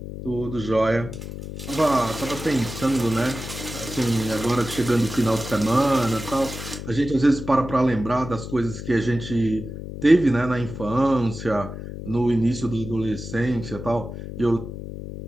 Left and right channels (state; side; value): noise; left; hum, 9 dB below the sound